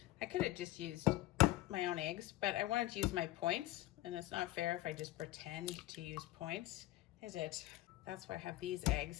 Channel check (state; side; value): quieter; right; 16.4 dB